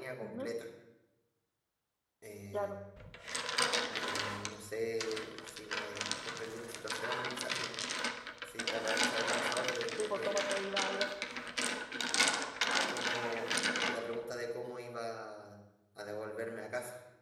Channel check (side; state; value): both; identical; correlation 1.00